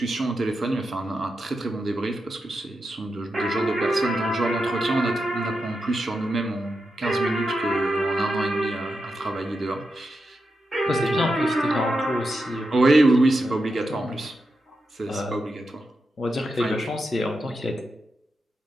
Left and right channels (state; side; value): normal; both; correlation 0.87